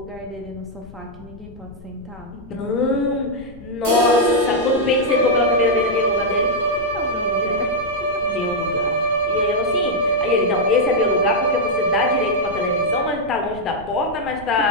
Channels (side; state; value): left; noise; rumble, 20 dB below the sound